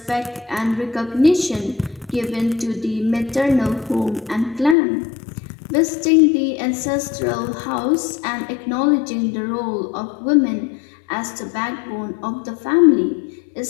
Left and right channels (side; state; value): right; drops out; at 4.8 s